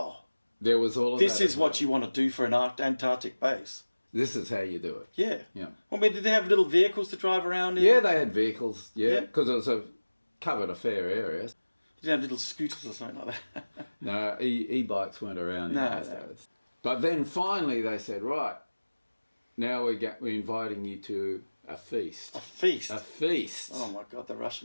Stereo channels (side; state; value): both; inverted; correlation -1.00